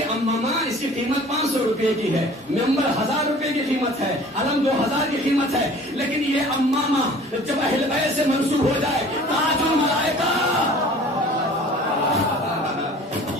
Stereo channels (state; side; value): normal; both; correlation 0.47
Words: امامہ اس کی قیمت 500 روپے کی ہے ممبر 1000 روپے کی قیمت ہے علم 2000 کی قیمت ہے لیکن یہ امامہ جب اہل بیت سے منسوب ہو جائے تاج الملائکہ